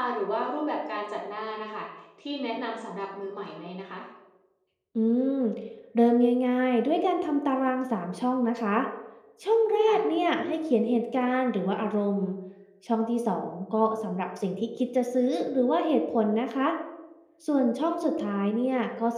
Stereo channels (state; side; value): identical; both; correlation 1.00